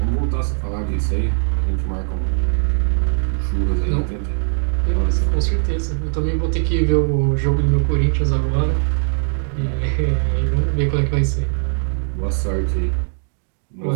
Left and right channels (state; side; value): silent; left; 59 dB below the other